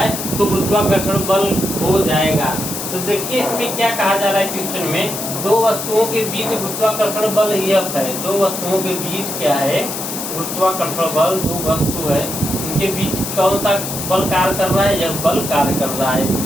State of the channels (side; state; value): left; noise; hiss, 6 dB below the sound